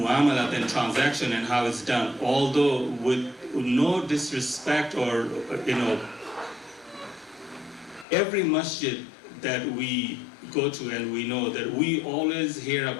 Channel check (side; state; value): right; drops out; at 8.1 s